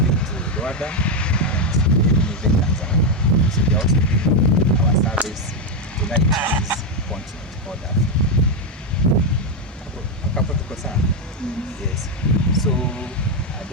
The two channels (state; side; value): normal; both; correlation 0.05